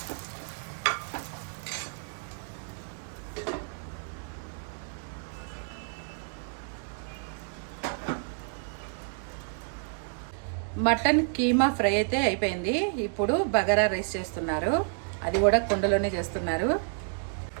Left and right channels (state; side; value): silent; left; 58 dB below the other